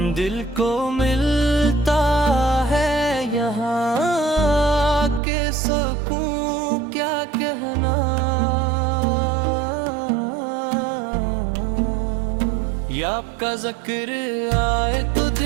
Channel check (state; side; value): drops out; left; at 5.2 s